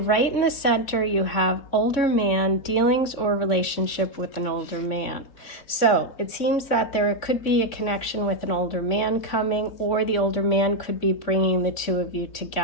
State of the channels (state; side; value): late; right; 3.6 ms